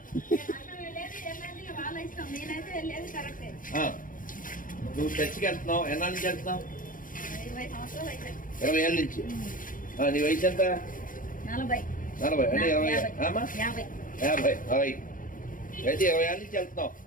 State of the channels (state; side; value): late; right; 0.39 ms